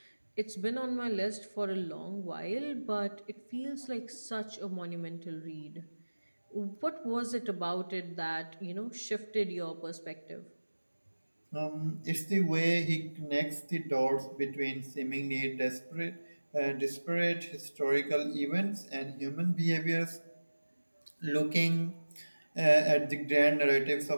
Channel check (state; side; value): inverted; both; correlation -1.00